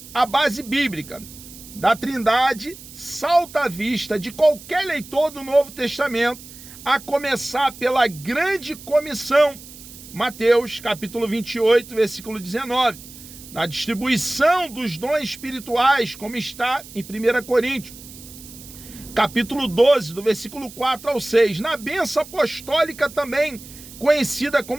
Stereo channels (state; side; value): noise; right; hiss, 17 dB below the sound